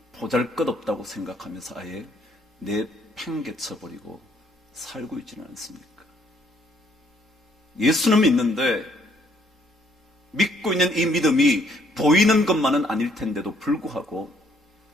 보잘것없다고 생각하면서 아예 내팽개쳐버리고 살고 있지는 않습니까? 예수는 믿는데 믿고 있는 이 믿음이 보이는 것만은 아닐 텐데도 불구하고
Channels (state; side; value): normal; both; correlation 0.66